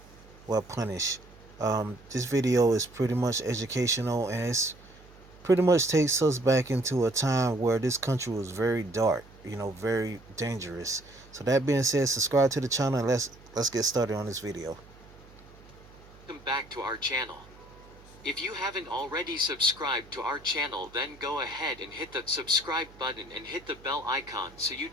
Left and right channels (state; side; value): noise; right; hum, 23 dB below the sound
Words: Well, punish. This video is pretty much educational, and it's pretty much takes us back into a time where this country was very dark, very dangerous. So that being said, subscribe to the channel and let's get started on this video. Welcome back to our channel. If you haven't already subscribed to our channel, then go ahead and hit the subscribe button and hit the bell icon so you